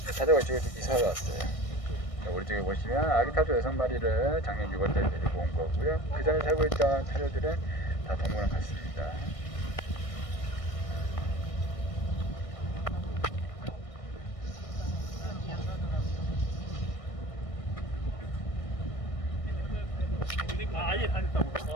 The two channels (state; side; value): late; right; 1.6 ms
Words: 타조가 이쪽에 이사를 왔어요. 우리 쪽에 보시면 아기 타조 6마리를 작년 6월달에 데리고 온 거고요. 그 전에 살고 있던 타조들은 다 동물원 갔습니다. 아예 다